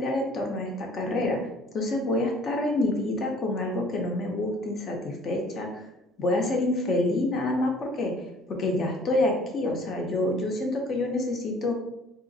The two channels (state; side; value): normal; both; correlation 0.54